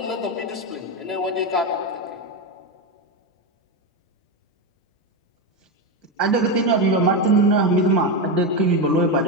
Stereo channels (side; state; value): both; normal; correlation 0.11